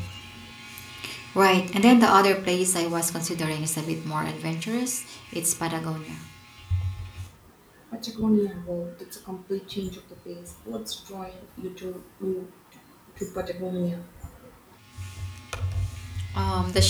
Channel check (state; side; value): identical; both; correlation 1.00